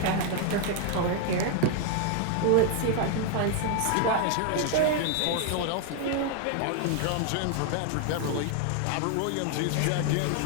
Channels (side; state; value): both; different; correlation 0.00